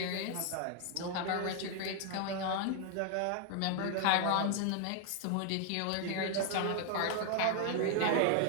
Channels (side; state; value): both; different; correlation 0.00